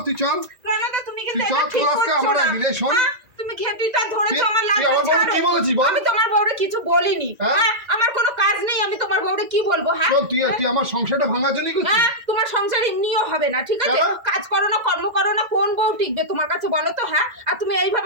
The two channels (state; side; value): late; left; 2.0 ms